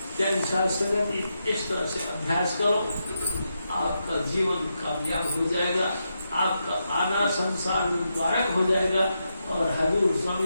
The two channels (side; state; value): both; inverted; correlation -0.85